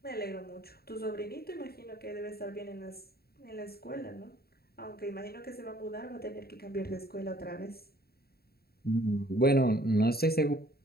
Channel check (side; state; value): right; late; 0.45 ms